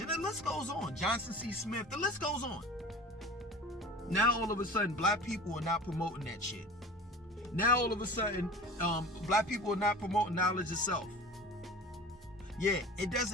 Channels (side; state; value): both; normal; correlation 0.37